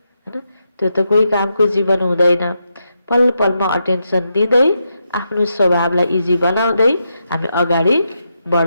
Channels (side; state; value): both; inverted; correlation -0.84